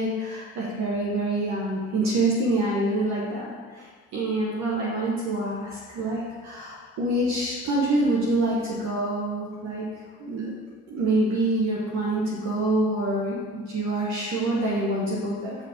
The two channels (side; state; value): both; normal; correlation 0.42